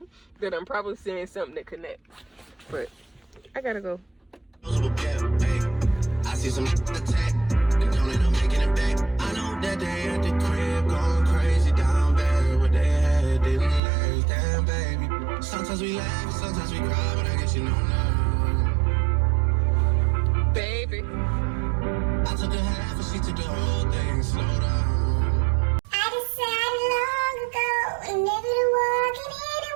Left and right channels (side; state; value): left; drops out; at 13.8 s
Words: That I'm probably saying something that connects. But I gotta go. I see some attack, and don't end up making it back. I know that they at the crib going crazy down bad. What they had didn't last, damn baby. Sometimes we laugh, sometimes we cry, but I guess you know now. Baby, I took a half and she took the whole thing, slow down. I decided long ago never to walk in